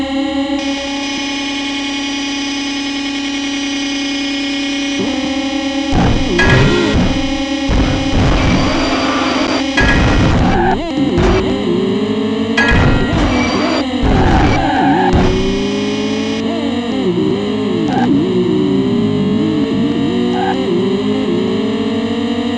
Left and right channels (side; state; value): both; identical; correlation 1.00